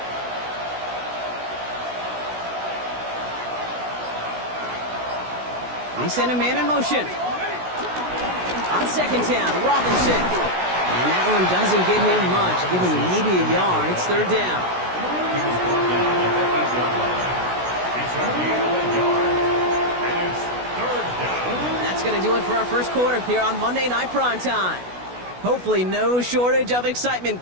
80. They send a man in motion. On 2nd down, Robinson. And that one doesn't get him much. Give him maybe a yard. It's 3rd down. That's going to do it for our first quarter here on Monday Night Primetime. Hopefully no shortage of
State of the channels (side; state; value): left; late; 16 ms